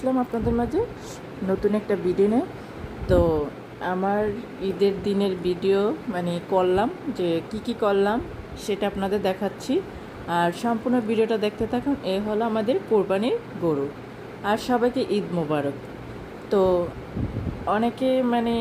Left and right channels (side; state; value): both; identical; correlation 1.00